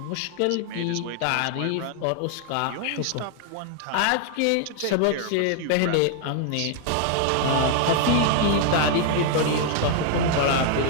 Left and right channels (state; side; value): different; both; correlation 0.00